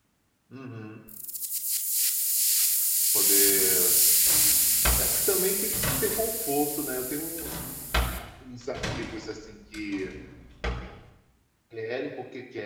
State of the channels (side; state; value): both; identical; correlation 1.00